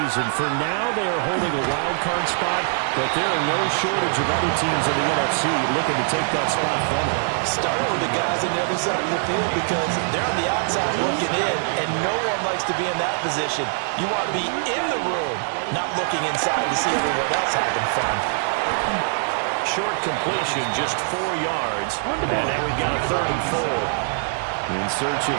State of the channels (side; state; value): left; silent; digital silence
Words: For now, they are holding a wild card spot, but there are no shortage of other teams in the NFC looking to take that spot from them. Starting with the guys on the other side of the field because they're on the outside looking in, and no one likes to be in that position. You want to be in the room, not looking inside to see everyone else having fun. Short completion, just 4 yards. And now we've got a 3rd and 4. In search of